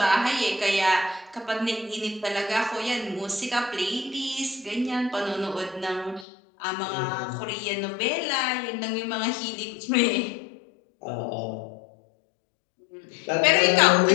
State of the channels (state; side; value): drops out; right; at 6.2 s